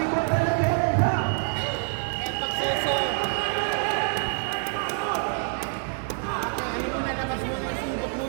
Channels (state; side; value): silent; left; 61 dB below the other